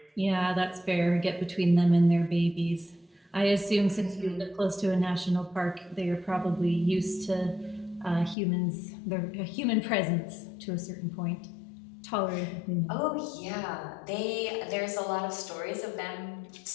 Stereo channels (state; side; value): drops out; right; at 8.3 s